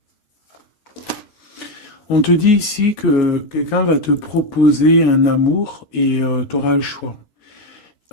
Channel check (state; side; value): late; right; 13 ms